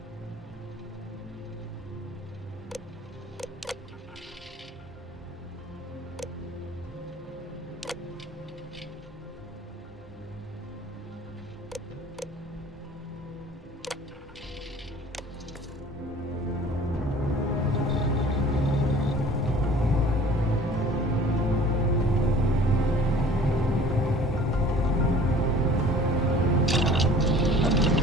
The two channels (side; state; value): both; normal; correlation 0.48